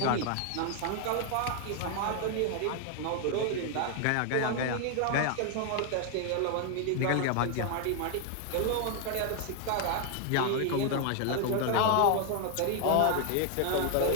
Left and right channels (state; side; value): different; both; correlation 0.00